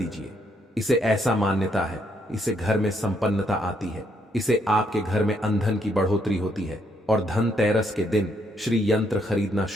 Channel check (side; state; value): both; normal; correlation 0.73